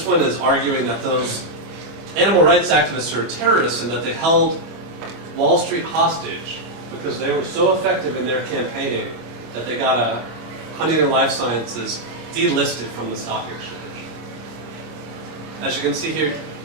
one is arguing that those animal rights activists are terrorists and that they held Wall Street hostage because they were so effective in their campaigning that they got a Huntington Life Sciences delisted from the stock exchange. As you can see here,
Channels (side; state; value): left; late; 25 ms